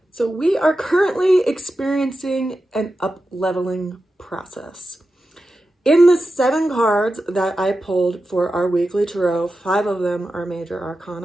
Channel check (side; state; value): both; normal; correlation 0.91